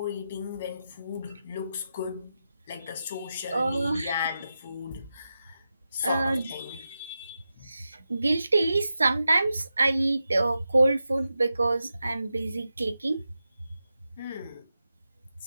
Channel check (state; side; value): inverted; both; correlation -0.90